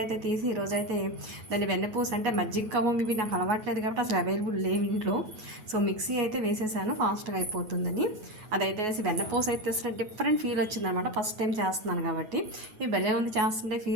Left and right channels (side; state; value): left; late; 9.4 ms